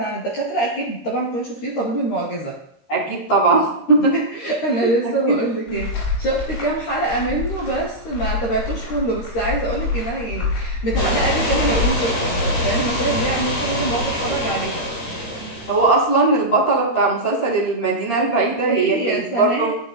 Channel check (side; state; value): right; late; 13 ms